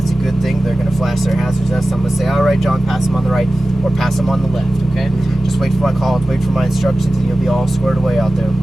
a good thing. They're going to flash their hazards at us. So I'm going to say, all right, John, pass them on the right or pass them on the left, okay? Just wait for my call, wait for my instructions, and you'll be all squared away out there.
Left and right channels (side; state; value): both; normal; correlation 0.95